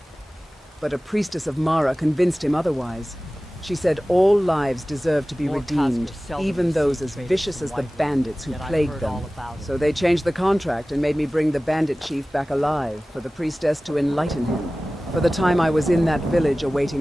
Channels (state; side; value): normal; both; correlation 0.97